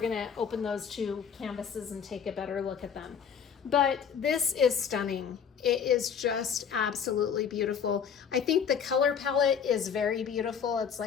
gonna open those two canvases and take a better look at them. But this is stunning. It is just absolutely beautiful. I think the color palette is very beautiful. It's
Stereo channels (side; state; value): right; quieter; 7.3 dB